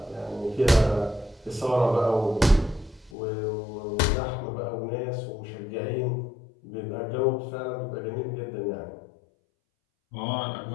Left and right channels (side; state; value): right; drops out; at 3.1 s